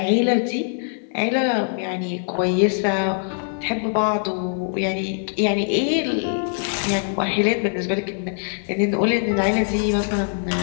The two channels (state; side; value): silent; right; 62 dB below the other